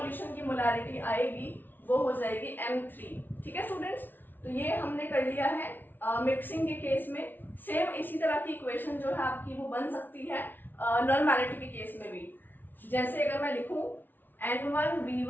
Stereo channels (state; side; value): late; right; 0.090 ms